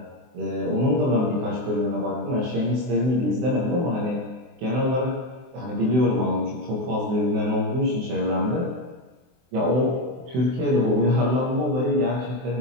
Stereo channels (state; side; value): late; left; 23 ms